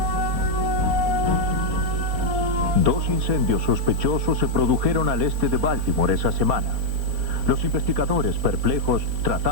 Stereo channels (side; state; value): left; late; 4.3 ms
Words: 2 incendios sospechosos se produjeron al este de Baltimore esa semana. Los investigadores, perplejos,